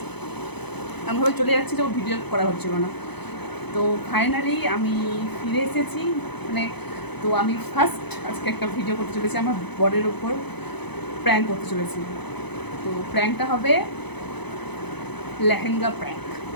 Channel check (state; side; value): late; right; 0.98 ms